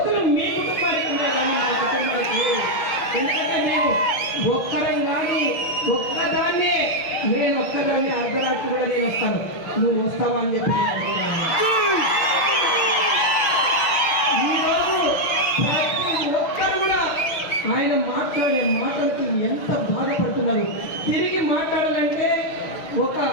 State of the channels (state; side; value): late; right; 6.1 ms